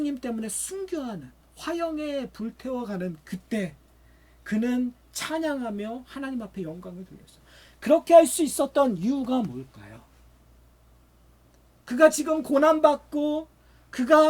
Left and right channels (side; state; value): both; identical; correlation 1.00